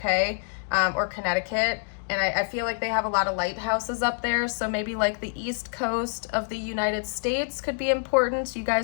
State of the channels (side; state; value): right; silent; digital silence